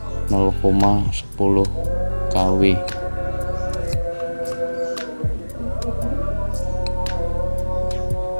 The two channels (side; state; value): both; inverted; correlation -1.00